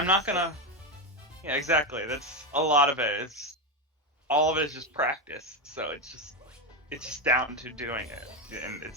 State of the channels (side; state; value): both; normal; correlation 0.10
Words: not gonna. Yeah, exactly. That's a lot of it. It's all of it is just practice. So it's just down to doing it, and